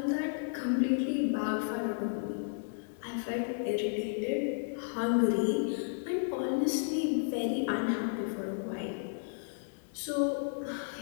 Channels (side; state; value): right; silent; digital silence